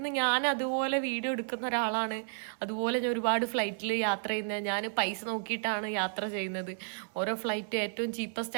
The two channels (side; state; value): left; silent; digital silence